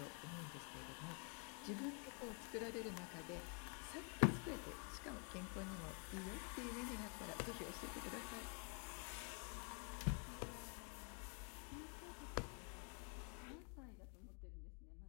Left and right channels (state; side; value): quieter; right; 39.1 dB